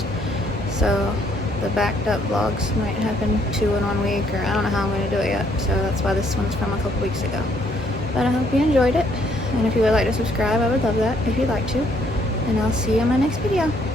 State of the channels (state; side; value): normal; both; correlation 0.68